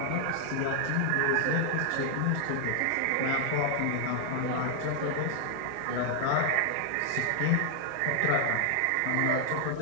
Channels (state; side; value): different; both; correlation 0.00